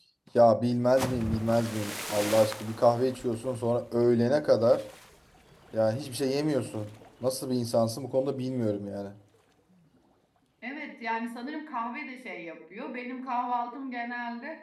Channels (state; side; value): identical; both; correlation 1.00